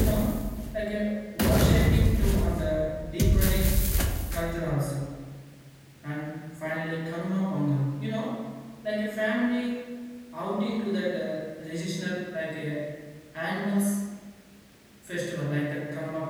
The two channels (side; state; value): both; identical; correlation 1.00